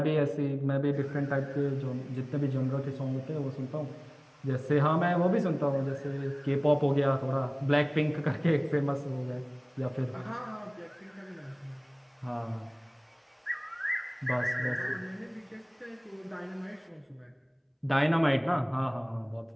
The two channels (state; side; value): identical; both; correlation 1.00